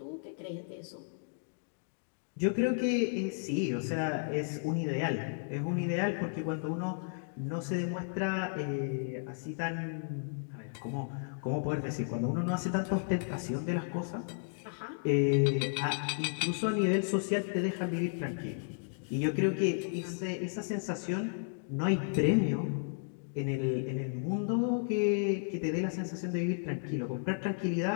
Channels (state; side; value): silent; right; digital silence